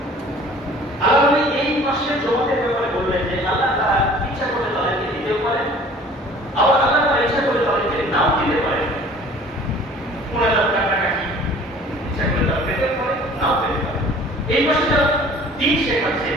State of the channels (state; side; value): normal; both; correlation 0.49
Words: আল্লাহ এই মাসের জমাতের ব্যাপারে বললেন যে আল্লাহ তারা ইচ্ছা করলে তাদেরকে দিতেও পারেন, আবার আল্লাহ তারা ইচ্ছা করে তাদেরকে নাও দিতে পারেন। 10,000 টাকা কি ইচ্ছা করে তারা পেতে পারে, নাও পেতে পারে। এই মাসে যারা দিন শেখাচ্ছে,